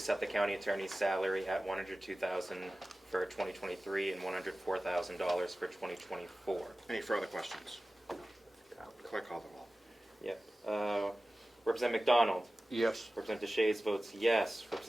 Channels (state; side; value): normal; both; correlation 0.96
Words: the county attorney's salary at $102,000 for 2023 and $104,000 for 2024. Any further questions? Clerk, call the roll. Yep. Representative McDonald. Yes. Representative DeShays votes yes.